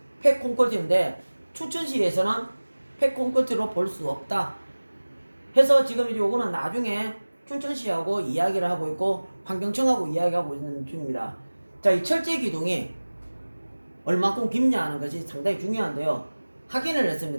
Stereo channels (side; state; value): both; inverted; correlation -1.00